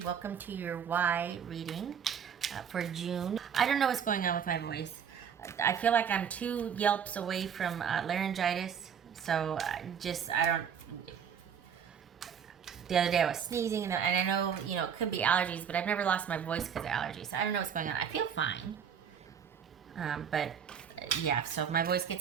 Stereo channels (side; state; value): left; quieter; 7.8 dB